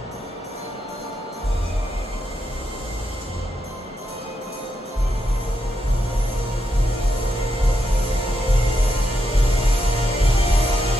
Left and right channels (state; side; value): normal; both; correlation 0.83